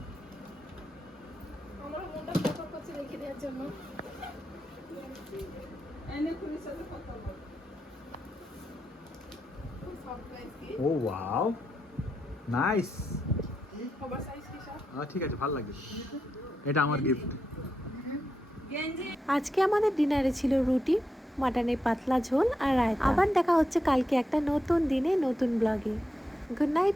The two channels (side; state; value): both; normal; correlation 0.85